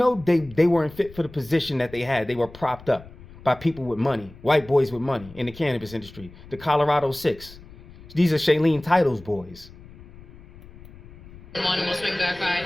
they weren't fit for the position that they had. They were propped up by people with money, white boys with money in the cannabis industry, the Colorado 6. These are Shailene Title's boys. And we'll swing back by.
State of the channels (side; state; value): left; noise; rumble, 19 dB below the sound